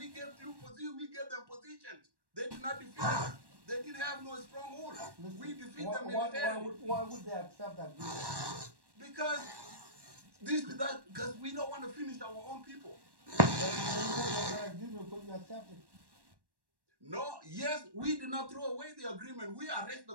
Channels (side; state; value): left; late; 1.1 ms